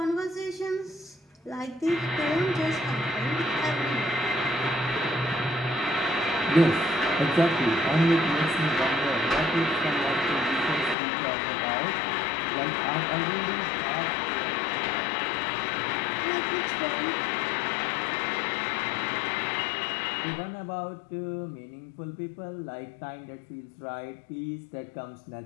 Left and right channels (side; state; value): right; drops out; at 11.0 s